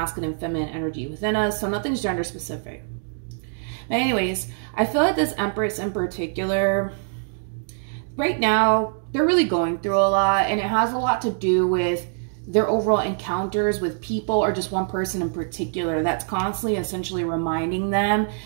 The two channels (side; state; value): left; silent; digital silence